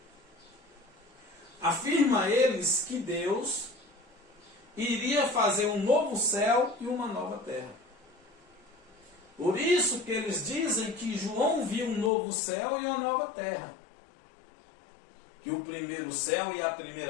Afirma eles que Deus iria fazer um novo céu e uma nova terra. Por isso que eles dizem que João viu um novo céu e uma nova terra. Que o primeiro céu e a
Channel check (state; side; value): drops out; right; at 12.1 s